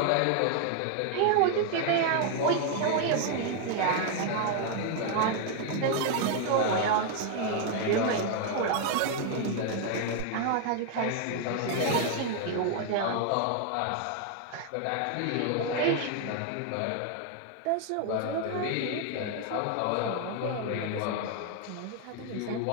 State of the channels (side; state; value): both; different; correlation 0.00